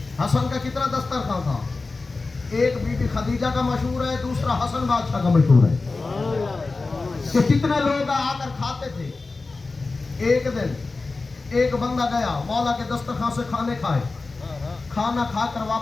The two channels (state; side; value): quieter; right; 3.7 dB